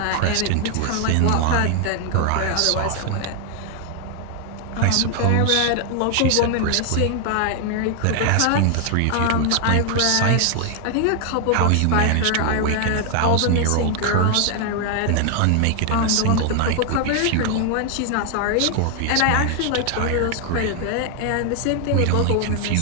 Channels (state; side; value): different; both; correlation 0.00